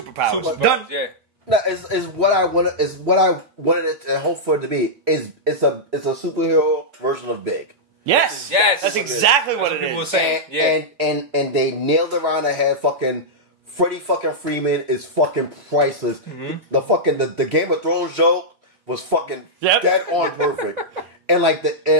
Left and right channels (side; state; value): left; late; 3.2 ms